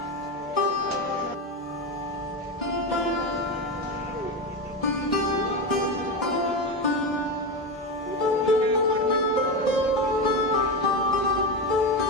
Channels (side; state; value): both; normal; correlation 0.16